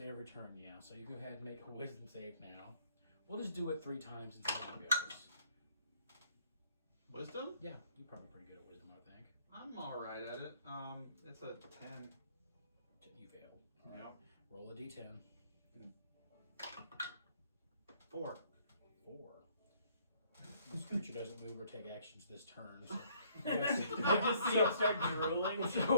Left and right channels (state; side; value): inverted; both; correlation -0.63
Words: turn, yeah. So you go ahead and make a wisdom save now. We'll just do it 3 times and see how it goes. Wisdom? Yeah, you're probably pretty good at wisdom, I think. I'm all right at it. It's a 10. You fail. Yep. Roll a d10. 4. 4. This creature doesn't move or take actions this turn. So I just see him start drooling.